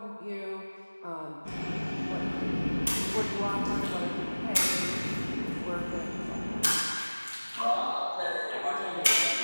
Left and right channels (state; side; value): inverted; both; correlation -1.00